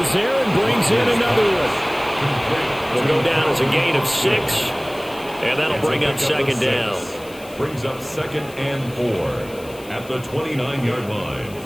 there and brings in another one. Will go down as a gain of 6. And that'll bring up second down. Brings up 2nd and 4 at the 29-yard line.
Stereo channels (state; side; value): noise; left; hiss, 20 dB below the sound